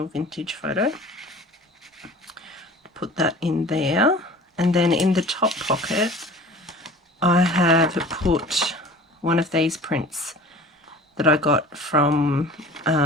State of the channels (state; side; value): normal; both; correlation 0.43